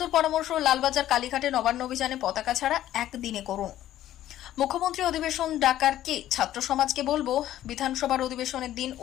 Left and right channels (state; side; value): quieter; right; 12.9 dB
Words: পরামর্শ, লালবাজার, কালীঘাটে নবান্ন অভিযানে পতাকা ছাড়া একদিনে করুন। মুখ্যমন্ত্রী অধিবেশন ডাকার কে? ছাত্র সমাজকে বলবো, বিধানসভার অধিবেশনের দিন